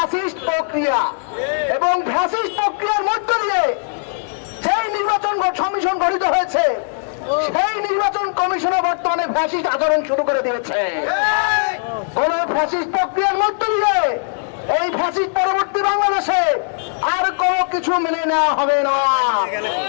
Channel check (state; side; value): silent; right; digital silence